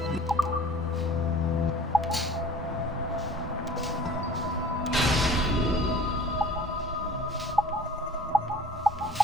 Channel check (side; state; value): both; normal; correlation 0.46